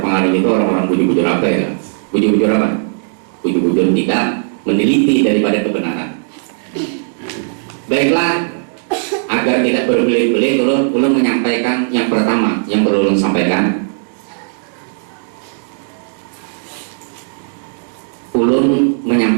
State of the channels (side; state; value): left; silent; digital silence